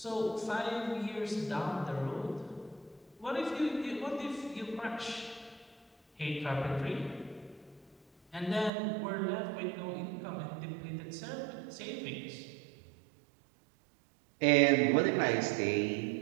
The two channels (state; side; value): drops out; left; at 8.7 s